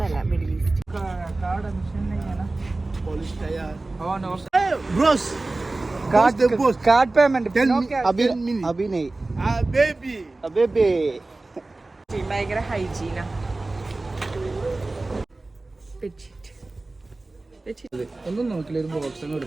അല്ല, middle east. Bros, card payment अभी नहीं बेबी ഭയങ്കര ഹൈജീനാ. ഒന്നും നോക്കില്ല, ഒരു ബോക്സ്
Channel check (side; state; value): left; quieter; 3.1 dB